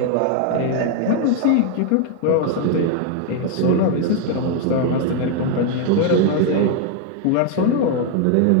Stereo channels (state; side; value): different; both; correlation 0.01